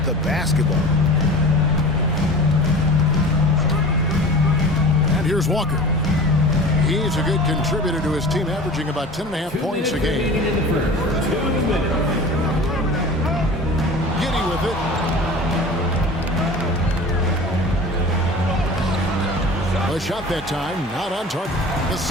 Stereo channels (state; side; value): normal; both; correlation 0.38